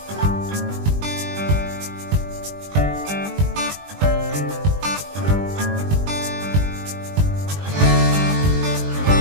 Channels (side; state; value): left; late; 20 ms